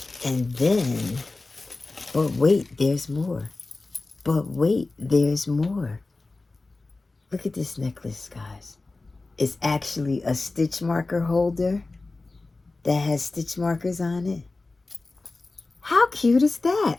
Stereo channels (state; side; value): quieter; right; 3.4 dB